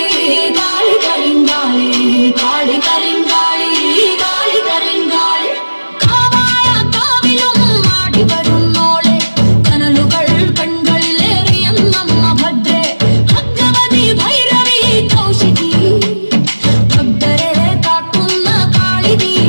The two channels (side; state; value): both; inverted; correlation -1.00